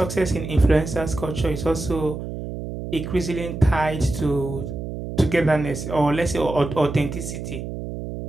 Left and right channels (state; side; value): noise; right; hum, 7 dB below the sound